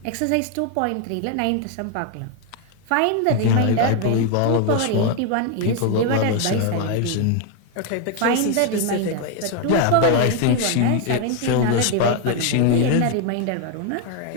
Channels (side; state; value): both; different; correlation 0.01